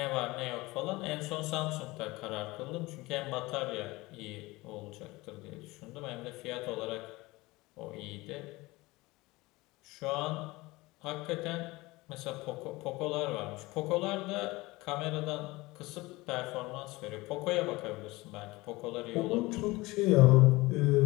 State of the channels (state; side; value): quieter; right; 21.3 dB